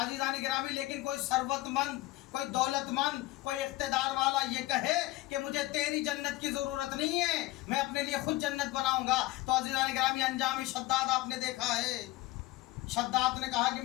گرامی، لیکن کوئی ثروت مند، کوئی دولت مند، کوئی اقتدار والا یہ کہے کہ مجھے تیری جنت کی ضرورت نہیں ہے، میں اپنے لیے خود جنت بناؤں گا، تو عزیزان گرامی انجام شداد آپ نے دیکھا ہے۔ شداد نے کہا کہ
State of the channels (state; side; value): quieter; right; 18.4 dB